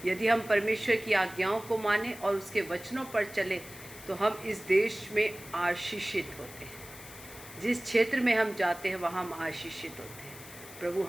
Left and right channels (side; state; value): left; noise; hiss, 16 dB below the sound